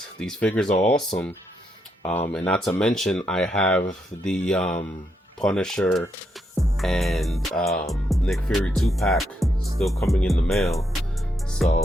these figures are awesome. And not to mention, I have the Punisher and Nick Fury 2-pack still coming in the mail.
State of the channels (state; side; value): normal; both; correlation 0.79